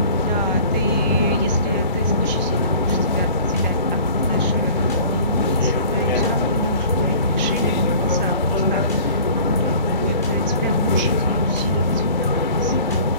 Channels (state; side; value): inverted; both; correlation -0.47